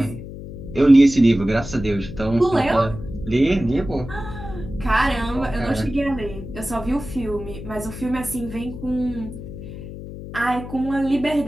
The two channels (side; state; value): left; noise; hum, 11 dB below the sound